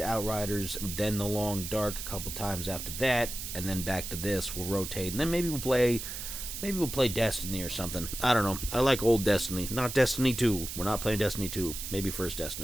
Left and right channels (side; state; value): right; noise; hiss, 7 dB below the sound